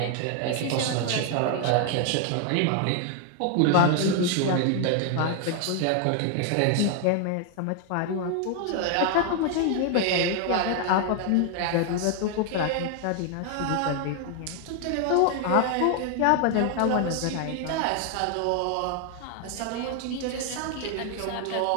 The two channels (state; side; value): different; both; correlation 0.00